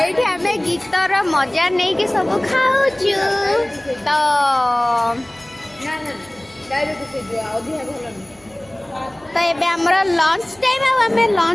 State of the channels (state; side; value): noise; right; hum, 28 dB below the sound